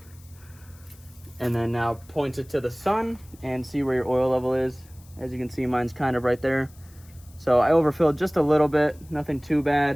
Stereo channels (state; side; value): noise; left; hiss, 26 dB below the sound